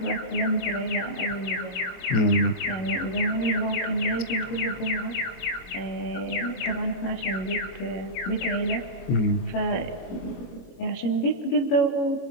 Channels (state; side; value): late; right; 22 ms